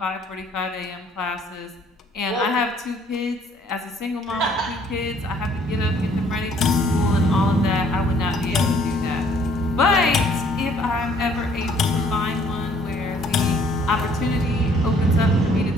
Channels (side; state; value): both; normal; correlation 0.60